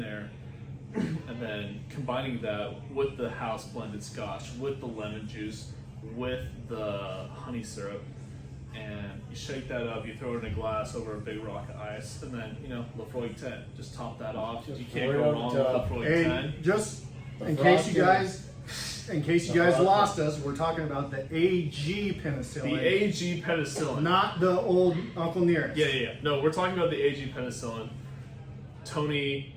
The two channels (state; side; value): identical; both; correlation 1.00